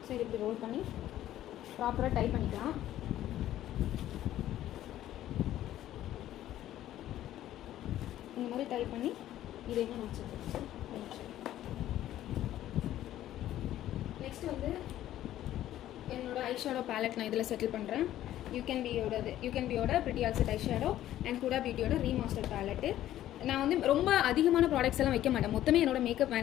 ஸோ இது இப்படி ரோல் பண்ணி ப்ராப்பராக டைப் பண்ணிக்கலாம். இந்த மாதிரி டைப் பண்ணி இதையும் நான் வச்சுருக்கேன். நெக்ஸ்ட் வந்து என்னோட ஐஷேடோ பேலட் நான் இதில் செட்டில் பண்ணுறேன். யூகேன்பியோட pretty all set eyeshadow and Huda பியூட்டியோட ரீமாஸ்டர் பேலட்டு. நான் வந்து ரொம்ப அதிகமான ப்ராடக்ட்ஸ் எல்லாம் வைக்க மாட்டேன். மொத்தமே என்னோட மேக்கப்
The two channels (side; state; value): right; quieter; 13.0 dB